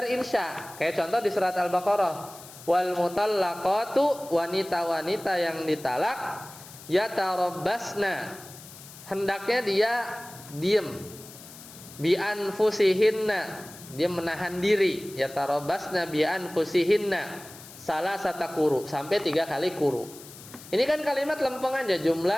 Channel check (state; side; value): noise; left; hiss, 17 dB below the sound